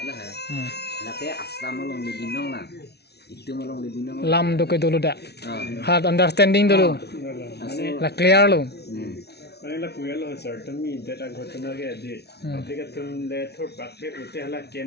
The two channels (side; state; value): right; late; 0.49 ms